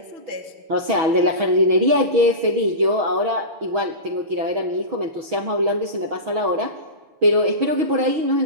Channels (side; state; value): left; late; 6.3 ms